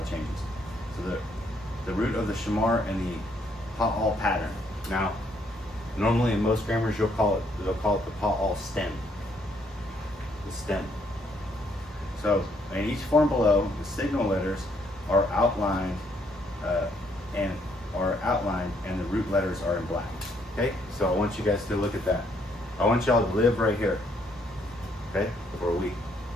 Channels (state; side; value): normal; both; correlation 0.70